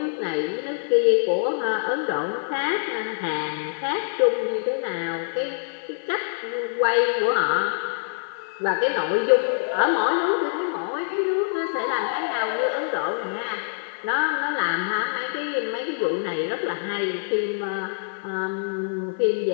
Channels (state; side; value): silent; right; digital silence